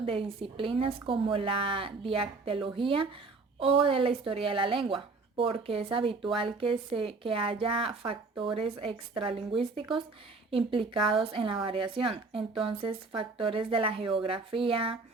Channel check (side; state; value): left; quieter; 3.9 dB